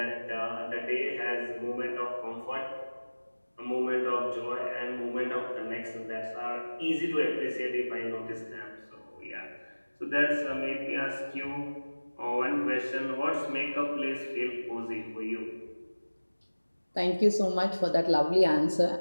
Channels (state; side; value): inverted; both; correlation -1.00